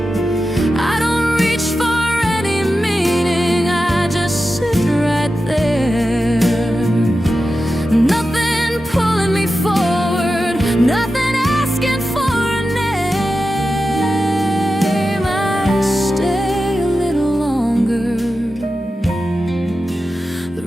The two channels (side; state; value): both; normal; correlation 0.92